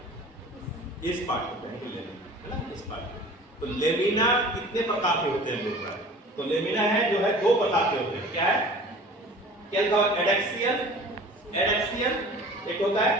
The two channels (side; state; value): both; normal; correlation 0.43